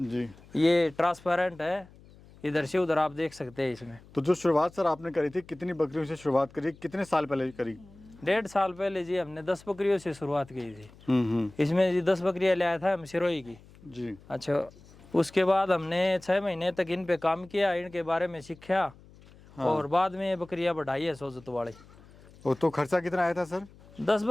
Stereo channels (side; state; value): left; noise; hum, 23 dB below the sound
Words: जी। ये ट्रांसपेरेंट है, इधर से उधर आप देख सकते हैं इसमें। तो जो शुरुआत सर आपने करी थी, कितनी बकरियों से शुरुआत करी, कितने साल पहले करी? 1.5 साल पहले जी हमने 10 बकरियों से शुरुआत की थी। इसमें जी 10 बकरियां लाया था हम सिरोही की जी। अच्छा, उसके बाद हमने 6 महीने तक इन पे काम किया, इनके बारे में सीखा। हाँ। और बाद में बकरियां बढ़ाई है सोजत वाली। तो खर्चा कितना आया था सर? 10